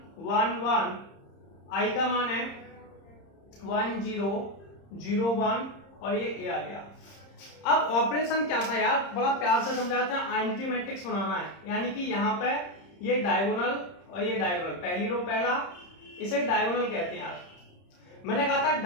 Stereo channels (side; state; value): right; late; 30 ms